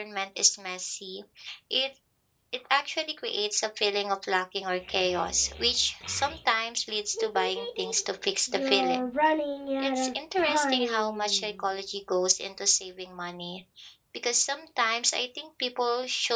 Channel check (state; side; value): identical; both; correlation 1.00